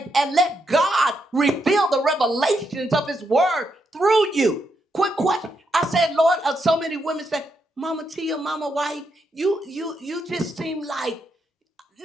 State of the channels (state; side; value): normal; both; correlation 0.81